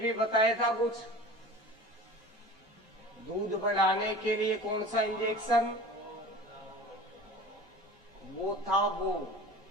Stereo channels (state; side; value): normal; both; correlation 0.38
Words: बताया था कुछ, दूध बढ़ाने के लिए कौन सा इंजेक्शन, वो था, वो